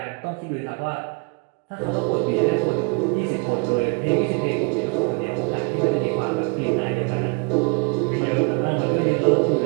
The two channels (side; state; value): left; quieter; 33.4 dB